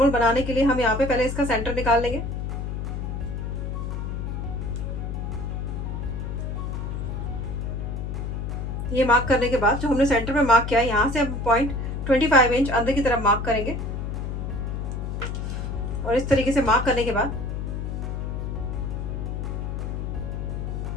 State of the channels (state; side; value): noise; left; hum, 3 dB below the sound